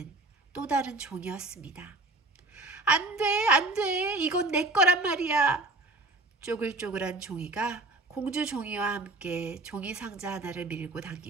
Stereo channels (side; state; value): left; quieter; 3.1 dB